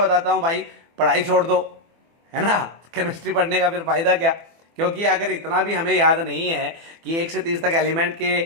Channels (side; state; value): left; late; 24 ms